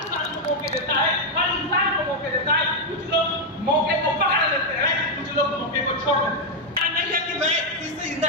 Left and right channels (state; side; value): normal; both; correlation 0.01